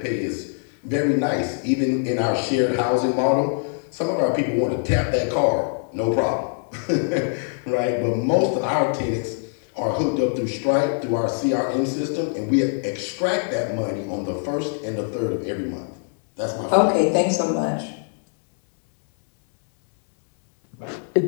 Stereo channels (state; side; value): silent; right; 63 dB below the other